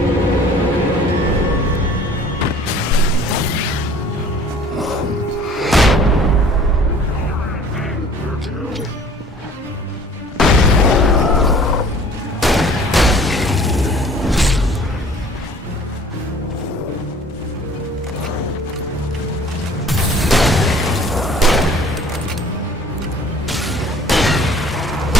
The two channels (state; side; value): normal; both; correlation 0.50